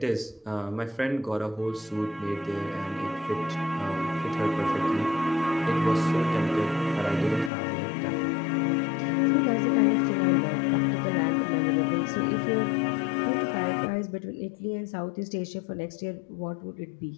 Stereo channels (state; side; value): drops out; right; at 7.5 s